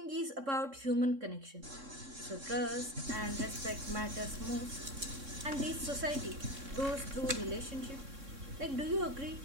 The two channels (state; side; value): late; left; 3.6 ms